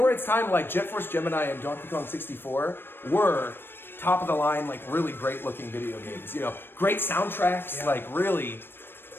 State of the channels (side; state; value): right; late; 0.10 ms